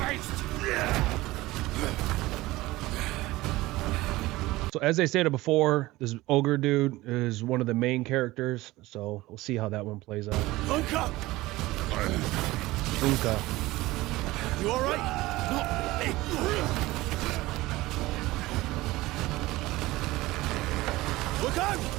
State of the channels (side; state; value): left; quieter; 18.8 dB